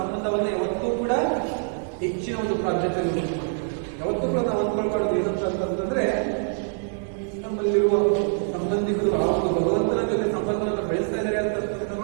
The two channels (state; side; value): silent; left; digital silence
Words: ಯಾವತ್ತೂ ಕೂಡ ಹೆಚ್ಚಿನ ಒಂದು ಪ್ರಾಧಾನ್ಯತೆ ಯಾವತ್ತೂ ಕೂಡ ನಾವು ಅಂದ್ಕೊಳ್ಬಾರ್ದು. ಏನಂತ ಅಂತಂದ್ರೆ ನಮ್ಮಲ್ಲಿರುವ ಸಂಬಂಧಿಕರು ಆ ಒಂದು ಭಗವಂತನ ಜೊತೆ ಸಂಬಂಧವನ್ನು ಬೆಳೆಸ್ತಾ ಇದ್ದಾರೆ